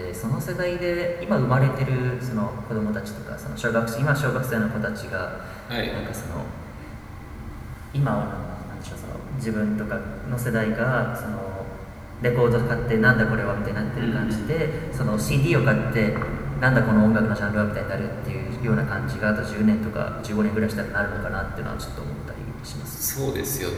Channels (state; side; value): identical; both; correlation 1.00